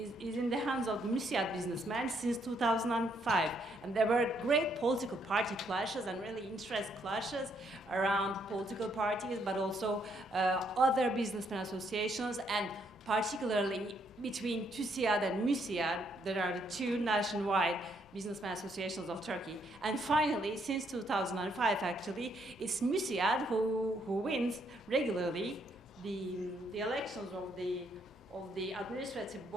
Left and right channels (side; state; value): left; noise; hum, 27 dB below the sound